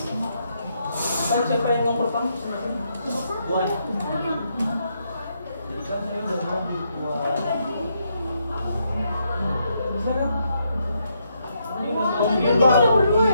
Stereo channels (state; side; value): inverted; both; correlation -0.77